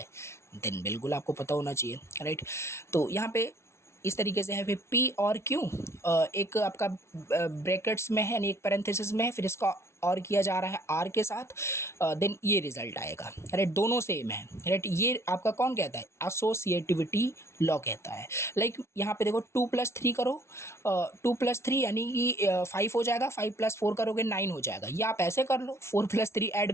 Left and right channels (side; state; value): right; late; 0.13 ms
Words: देन बिल्कुल आपको पता होना चाहिए, राइट। तो यहाँ पे इस तरीके से है, फिर P और Q एक आपका ब्रैकेट्स में है, यानी एक पैरेंथेसिस में है, फिर इसका और किया जा रहा है R के साथ, देन ये रिजल्ट आएगा, राइट। दोनों सेम है, राइट। ये आपका कौन कहता है, एसोसिएटिविटी लॉ कहता है। लाइक यहाँ पे देखो 2+3 करो, 2+3 यानी कि 5 हो जाएगा, 5+4 करोगे 9 हो जाएगा, या आप ऐसे कर लो 4+3 ऐड